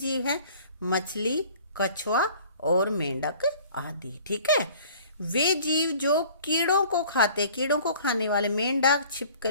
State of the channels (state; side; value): inverted; both; correlation -0.50